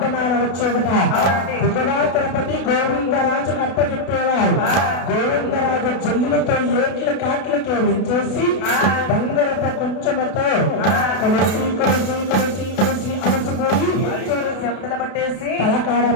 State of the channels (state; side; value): late; right; 32 ms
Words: వచ్చేట దిగుడా తిరుపతి గోవిందరాజు అప్పచెప్పేవారు. గోవిందరాజు జల్లులతో ఏట్ల కాట్లకే వించేసి బంగారపు కొంచెంతో కొలిసి కొలిసి కొలిసి కొలిసి అలసిపోయి చెమటలు పట్టేసి తలకాడ